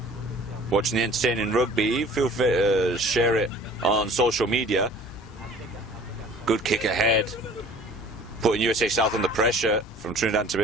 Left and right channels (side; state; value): both; normal; correlation 0.48